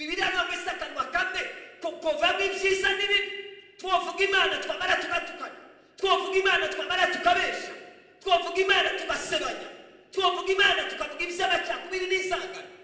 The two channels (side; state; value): both; identical; correlation 1.00